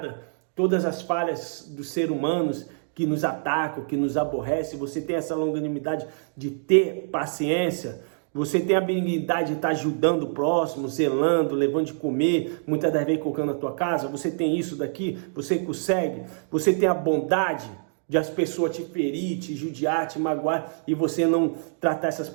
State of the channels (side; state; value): left; silent; digital silence